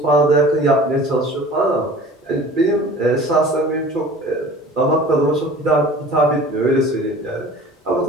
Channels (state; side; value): normal; both; correlation 0.44